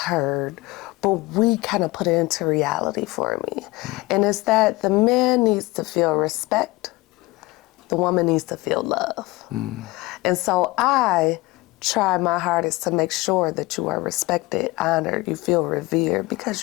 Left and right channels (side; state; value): right; quieter; 21.6 dB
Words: but we kind of put it into reality for me. And it's that the man needs to feel respect, the woman needs to feel love. And so I try my hardest to make sure that you are respected, honored, you feel revered, because